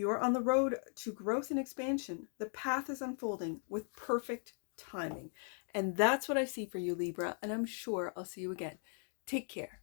are on the road to growth and expansion. The path is unfolding with perfect timing. And that's what I see for you, Libra. And I'm sure I'll see you again. Take care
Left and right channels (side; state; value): right; silent; 52 dB below the other